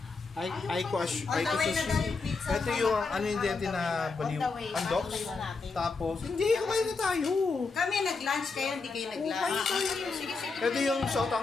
Ito yung ano yung dente na baliw. Andok. Tapos, hindi, kumain na tayo. Kami nag-lunch kayo, hindi kayo nag-lunch. Sige. Ito yung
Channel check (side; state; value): right; quieter; 4.3 dB